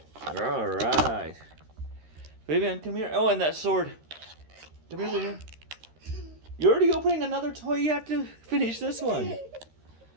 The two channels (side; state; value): left; late; 13 ms